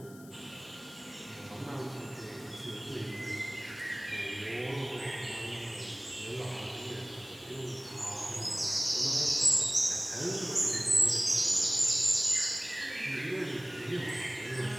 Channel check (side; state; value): left; noise; hiss, 21 dB below the sound